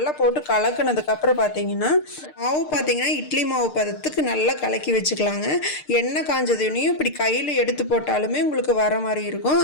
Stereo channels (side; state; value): right; late; 6.6 ms